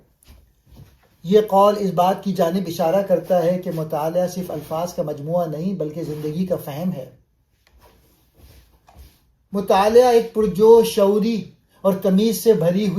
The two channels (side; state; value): both; identical; correlation 1.00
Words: یہ قول اس بات کی جانب اشارہ کرتا ہے کہ مطالعہ صرف الفاظ کا مجموعہ نہیں بلکہ زندگی کا فہم ہے. مطالعہ ایک پرجوش، شعوری اور تمیز سے بھری